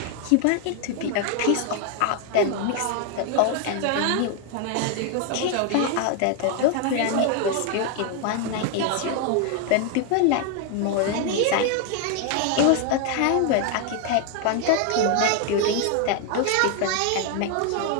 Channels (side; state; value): both; different; correlation 0.00